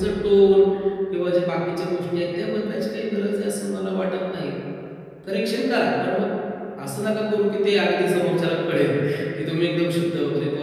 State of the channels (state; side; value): identical; both; correlation 1.00